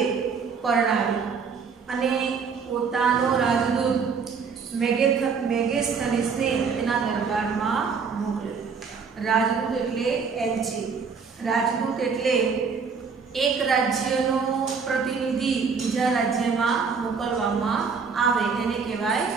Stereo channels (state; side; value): quieter; left; 5.6 dB